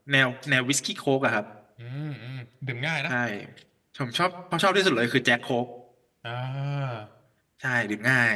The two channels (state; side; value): identical; both; correlation 1.00